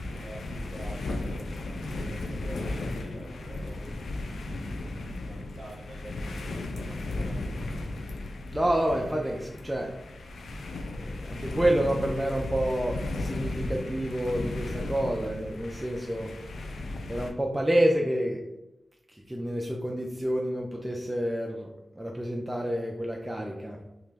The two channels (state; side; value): normal; both; correlation 0.94